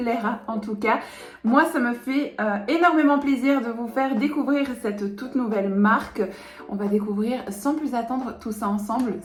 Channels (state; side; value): identical; both; correlation 1.00